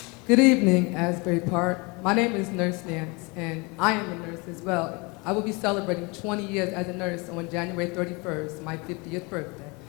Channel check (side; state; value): right; quieter; 28.0 dB